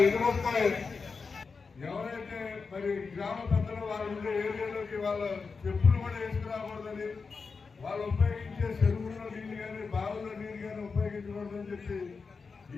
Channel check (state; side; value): quieter; right; 4.8 dB